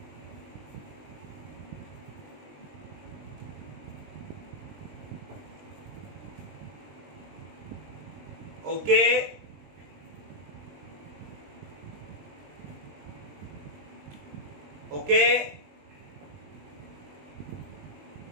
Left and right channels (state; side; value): late; left; 20 ms